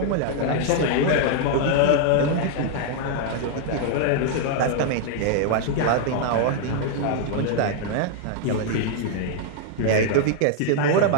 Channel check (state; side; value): different; both; correlation 0.00